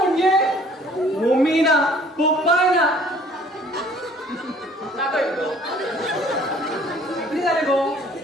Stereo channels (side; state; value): both; normal; correlation 0.55